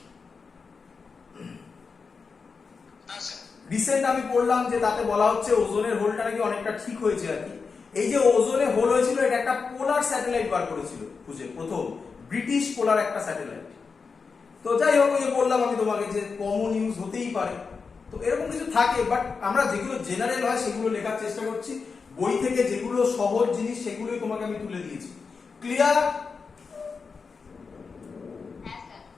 রিসেন্ট আমি পড়লাম যে তাতে বলা হচ্ছে ওজোনের হোলটা নাকি অনেকটা ঠিক হয়েছে আর কি। এই যে ওজোনে হোল হয়েছিল, এটা একটা পোলার স্যাটেলাইট বার করেছিল খুঁজে, প্রথম ব্রিটিশ পোলার একটা স্যাটেলাইট। তো যাই হোক, ওই যে বললাম আমি তোমাকে যে কমন ইউজ হতেই পারে, তো এরকম কিছু থাকে, বাট আমরা যেগুলো জেনারেল হয় সেগুলো লেখার চেষ্টা করছি। বই থেকে যেগুলো সহজ জিনিস সেগুলোই তোমাকে আমি তুলে দিয়েছি। ক্লিয়ার?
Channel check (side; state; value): right; quieter; 5.0 dB